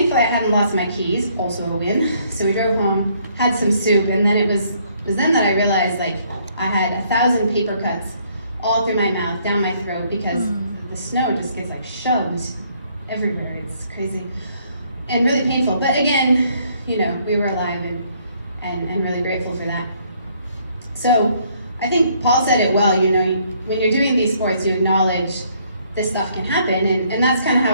I hadn't lost my keys, also a win. So we drove home, had some soup, and then it was then that I realized, like, I had 1,000 paper cuts all through my mouth, down my throat, because the snow just gets like shoved everywhere. It's crazy and really painful. But again, you know, we were alive and really grateful for that. So I think Paul said it well, you know, when you're doing these sports, you acknowledge this stuff can happen, and that's kind of how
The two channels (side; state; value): both; inverted; correlation -0.66